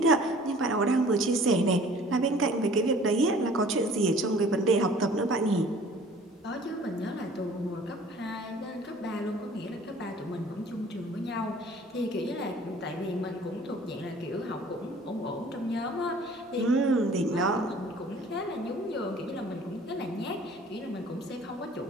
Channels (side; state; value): both; normal; correlation 0.50